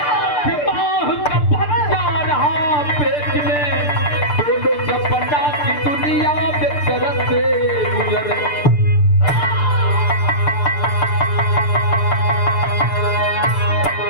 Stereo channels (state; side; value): late; right; 6.8 ms